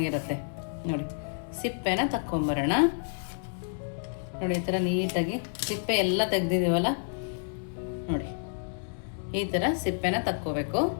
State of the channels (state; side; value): silent; right; digital silence